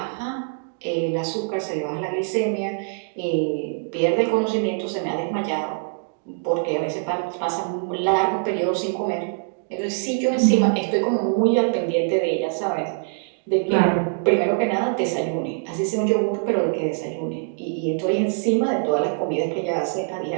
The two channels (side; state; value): left; silent; digital silence